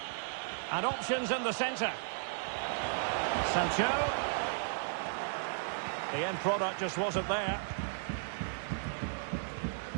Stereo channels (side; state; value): left; silent; digital silence